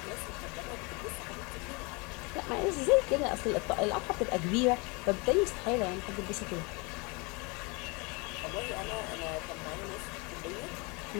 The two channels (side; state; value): right; quieter; 29.0 dB